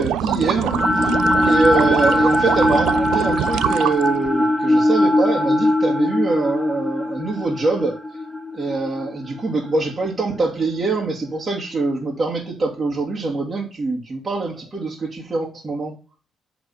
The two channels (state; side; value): normal; both; correlation 0.83